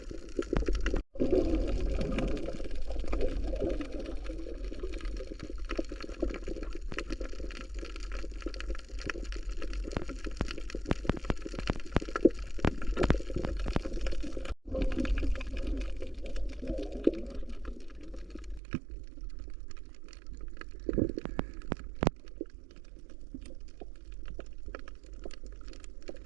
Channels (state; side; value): drops out; left; at 18.6 s